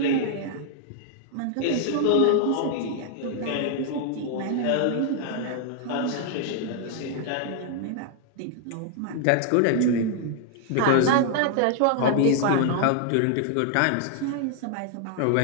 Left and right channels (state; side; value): different; both; correlation 0.00